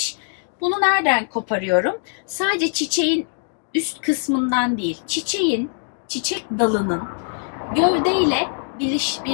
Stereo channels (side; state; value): right; silent; 60 dB below the other